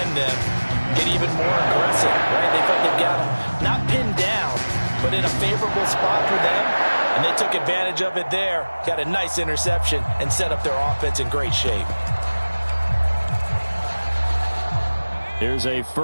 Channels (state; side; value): inverted; both; correlation -1.00